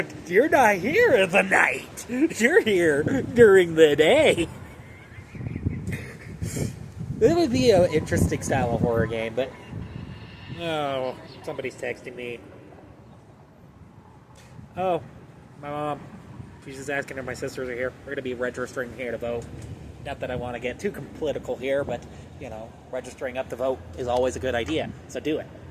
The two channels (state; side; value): identical; both; correlation 1.00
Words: you're not here at the night. You're here during the day. It would be an interesting style of horror game, but... Oh, somebody's texting me. Oh, my mom. She's just asking if my sisters are here. We're going to be registering here to vote. Not that I want to get too political here, but, registering up to vote is always a good idea. So do it.